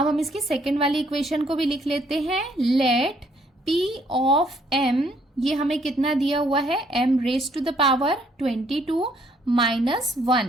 हम इसकी सेकेंड वाली इक्वेशन को भी लिख लेते हैं, लेट p ऑफ m, ये हमें कितना दिया हुआ है, m raise to the power 22 minus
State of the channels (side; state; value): both; normal; correlation 0.67